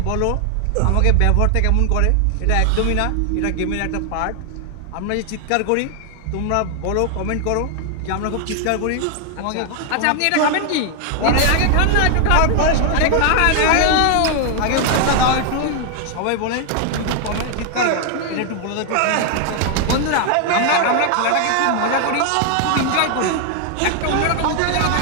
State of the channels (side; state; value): both; different; correlation 0.00